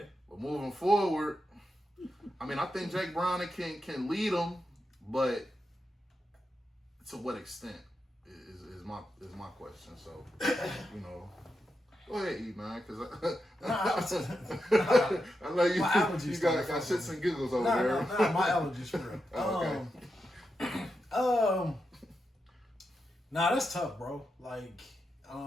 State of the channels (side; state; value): both; normal; correlation 0.87